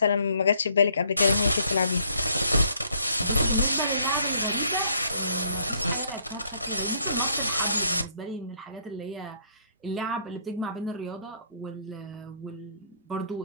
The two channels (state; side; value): inverted; both; correlation -0.65